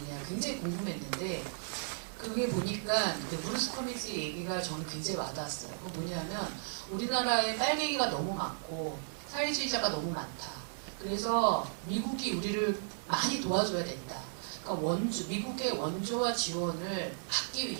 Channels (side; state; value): left; silent; digital silence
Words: 굉장히 궁금했는데 그게 보니까 그 브루스 커밍스의 얘기가 저는 굉장히 와닿았어요. 그건 뭐냐면 우리나라에 빨갱이가 너무 많고 사회주의자가 너무 많다. 그래서 미국이 우리를 많이 도와줘야 된다. 그러니까 미국의 원조와 지원을 받기